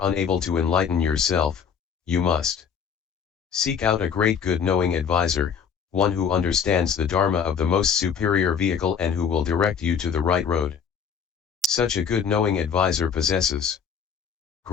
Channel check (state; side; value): quieter; right; 7.1 dB